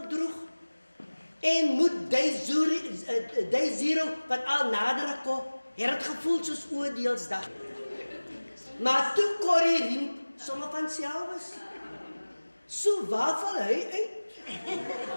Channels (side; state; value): both; inverted; correlation -1.00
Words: En moet day zero wat al nader kom, het gevoel soos oordeelsdag. Maar toe Corrie Riem sommer van self is. So waar val hy uit?